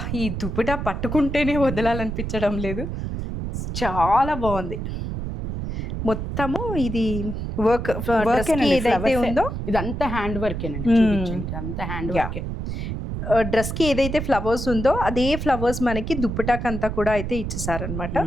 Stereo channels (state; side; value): noise; right; rumble, 4 dB below the sound